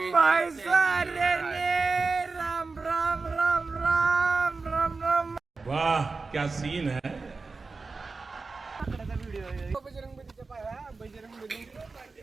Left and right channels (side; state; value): left; quieter; 4.1 dB